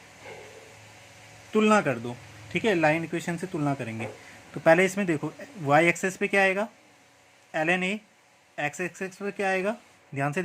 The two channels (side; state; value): both; identical; correlation 1.00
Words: तुलना कर दो। ठीक है, लाइन इक्वेशन से तुलना करेंगे। तो पहले इसमें देखो वाई एक्सेस पे क्या आएगा, L N A, X axis पे क्या आएगा, ध्यान से